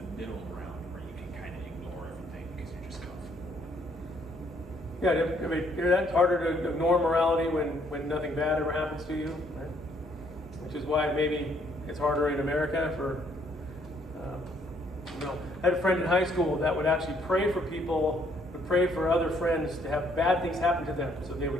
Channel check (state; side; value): normal; both; correlation 0.67